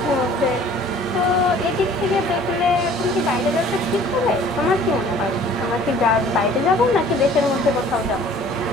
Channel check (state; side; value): normal; both; correlation 0.51